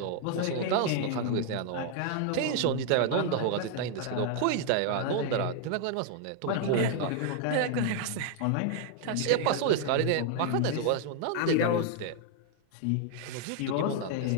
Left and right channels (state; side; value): different; both; correlation 0.00